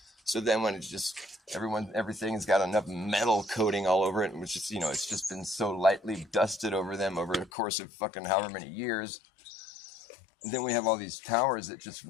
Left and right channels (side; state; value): right; drops out; at 7.5 s